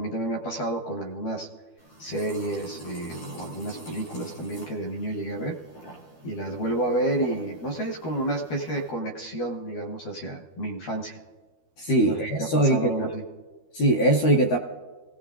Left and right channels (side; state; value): right; late; 12 ms